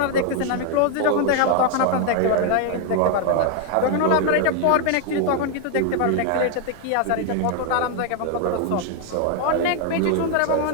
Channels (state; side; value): different; both; correlation 0.00